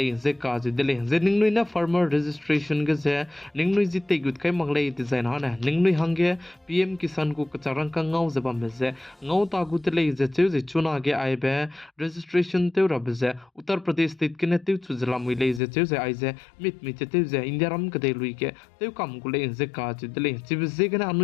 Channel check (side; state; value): right; drops out; at 15.6 s